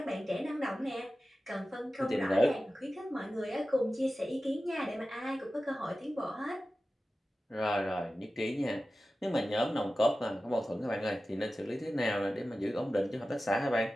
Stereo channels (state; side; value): normal; both; correlation 0.95